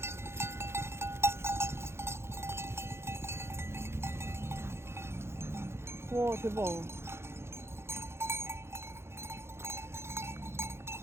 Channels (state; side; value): late; left; 0.12 ms